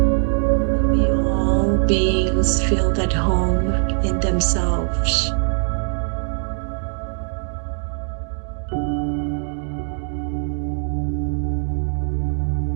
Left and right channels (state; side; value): silent; left; 65 dB below the other